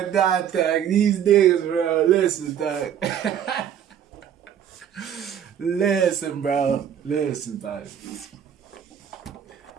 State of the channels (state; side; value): quieter; left; 9.2 dB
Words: dog. These niggas, bro. Listen, dog. Listen, bro. Listen, dog.